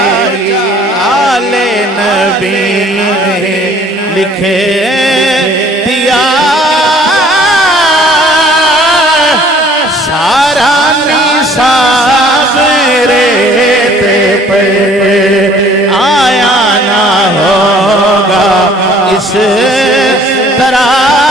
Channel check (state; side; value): normal; both; correlation 0.55